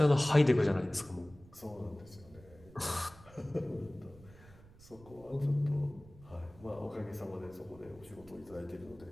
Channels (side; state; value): right; noise; rumble, 22 dB below the sound